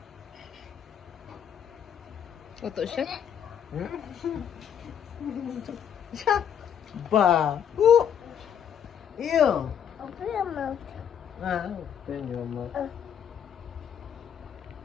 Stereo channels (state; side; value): quieter; right; 8.6 dB